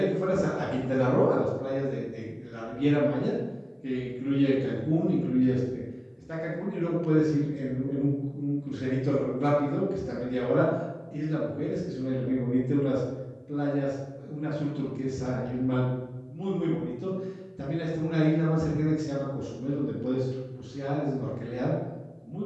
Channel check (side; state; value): both; identical; correlation 1.00